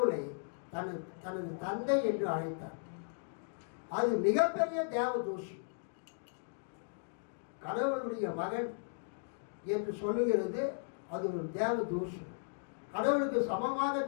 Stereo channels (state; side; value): silent; right; digital silence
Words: தனது தந்தை என்று அழைத்தார். அது மிகப்பெரிய தேவ தூஷம். கடவுளுடைய மகன் என்று சொல்லுகிறது அது ஒரு தேவ தூஷம். கடவுளுக்கு சமமாக